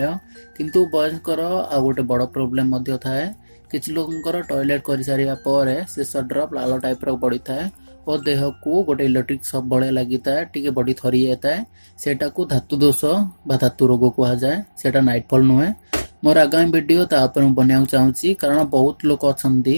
किंतु बयस्कर आ गोटे बड़ प्रोब्लेम मध्य थाए किछि लोकंकर टॉयलेट करि सारिया परे शेष ड्रॉप लाल टाइप रो पड़ी थाए और देह को गोटे इलेक्ट्रिक सब बड़े लगी था टी बॉडी थरी जाता है। सेटा को धातु दोष बा धातु रोग कह जाए। सेटा नाइटफॉल नुहे। मोर आगामी वीडियो बनाया चाहूँगी कारण बहुत लोक अच्छा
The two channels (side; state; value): both; inverted; correlation -1.00